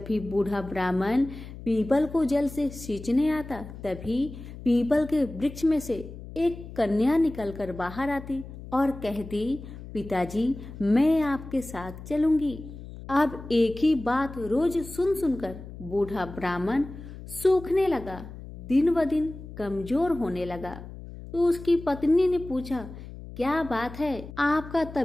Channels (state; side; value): noise; left; hum, 13 dB below the sound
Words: भी बूढ़ा ब्राह्मण पीपल को जल से सींचने आता तभी पीपल के वृक्ष में से एक कन्या निकलकर बाहर आती और कहती, पिताजी मैं आपके साथ चलूंगी। अब एक ही बात रोज सुन सुनकर बूढ़ा ब्राह्मण सूखने लगा, दिन ब दिन कमजोर होने लगा। तो उसकी पत्नी ने पूछा, क्या बात है, आपका